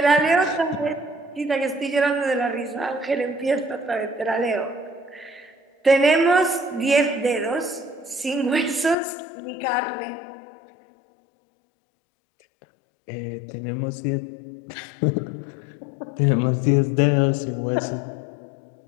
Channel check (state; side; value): drops out; right; at 9.0 s